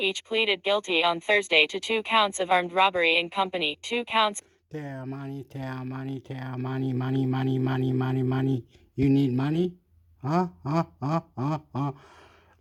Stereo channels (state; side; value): identical; both; correlation 1.00